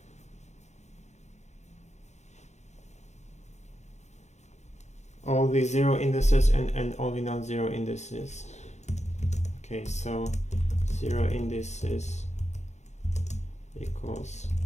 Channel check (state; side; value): late; right; 0.33 ms